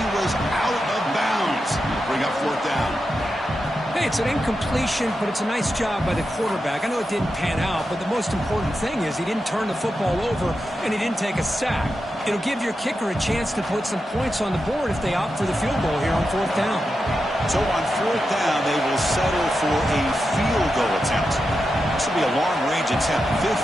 was out of bounds. Bring up fourth down. Hey, it's an incompletion, but it's a nice job by the quarterback. I know it didn't pan out, but the most important thing is he didn't turn the football over and he didn't take a sack. It'll give your kicker a chance to put some points on the board if they opt for the field goal here on fourth down. So on fourth down, they will settle for a field goal attempt. This will be a long-range attempt,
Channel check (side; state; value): both; normal; correlation 0.89